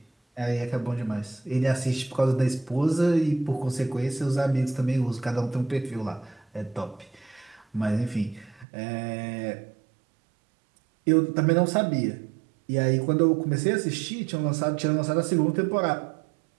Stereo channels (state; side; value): drops out; left; at 8.7 s